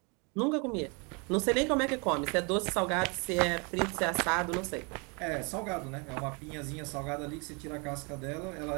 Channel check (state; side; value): quieter; left; 32.5 dB